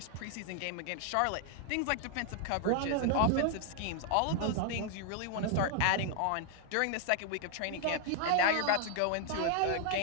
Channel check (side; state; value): both; different; correlation 0.00